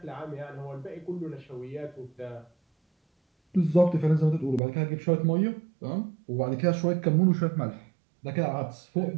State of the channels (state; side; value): drops out; left; at 4.6 s